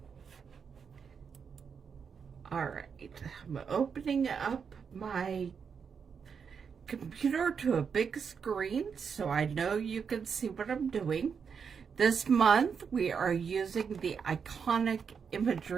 all right, I'm opening up my computer to a big screen so I know you can see what I'm doing. This month, we are using the Iconic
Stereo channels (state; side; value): quieter; left; 6.4 dB